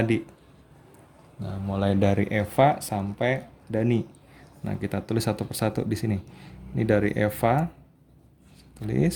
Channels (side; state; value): both; identical; correlation 1.00